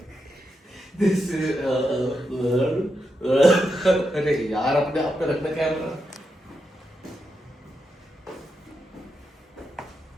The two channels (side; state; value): both; normal; correlation 0.85